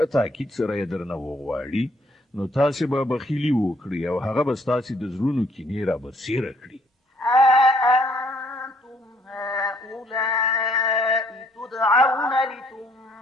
تاکید سره یې درنه وغواړي نو تاسې به بخیلي وکړي او هغه به ستاسې د زړونو کینې رابرسېره کړي ها أنتم هؤلاء تدعون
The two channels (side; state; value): both; normal; correlation 0.65